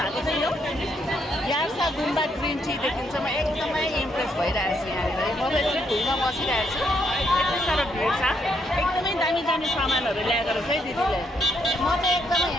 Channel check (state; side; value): normal; both; correlation 0.75